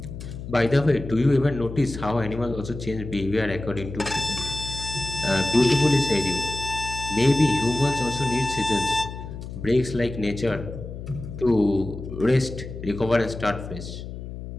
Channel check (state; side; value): noise; left; hum, 10 dB below the sound